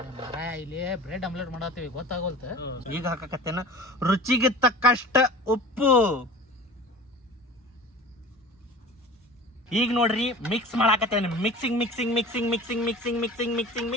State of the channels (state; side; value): normal; both; correlation 0.38